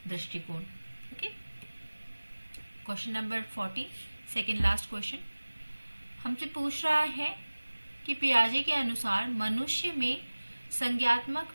दृष्टिकोण। Okay, question number 40, second last question हमसे पूछ रहा है कि पियाजे के अनुसार मनुष्य में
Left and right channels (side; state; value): both; inverted; correlation -1.00